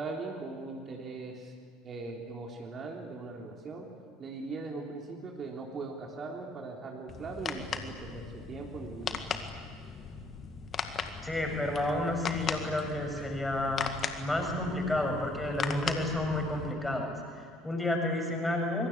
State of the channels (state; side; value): normal; both; correlation 0.63